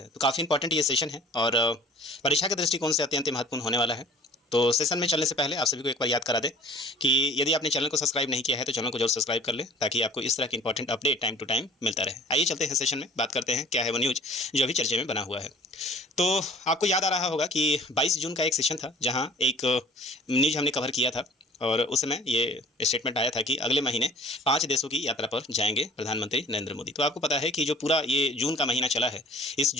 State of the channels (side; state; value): both; normal; correlation 0.48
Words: तो काफ़ी इंपॉर्टेंट ये सेशन है और परीक्षा के दृष्टिकोण से अत्यंत महत्वपूर्ण होने वाला है। तो सेशन में चलने से पहले आप सभी को एक बार याद करा दें कि यदि आपने चैनल को सब्सक्राइब नहीं किया है तो चैनल को जरूर सब्सक्राइब कर लें, ताकि आपको इस तरह की important update time to time मिलता रहे। आइए चलते हैं सेशन में, बात करते हैं क्या है वो न्यूज़ जो अभी चर्चे में बना हुआ है। तो आपको याद आ रहा होगा कि 22 जून का एक सेशन था, जहाँ एक न्यूज़ हमने कवर किया था और उस समय ये स्टेटमेंट आया था कि अगले महीने 5 देशों की यात्रा पर जाएंगे प्रधानमंत्री नरेंद्र मोदी। तो आपको पता है कि जो पूरा ये जून का महीना चला है, इस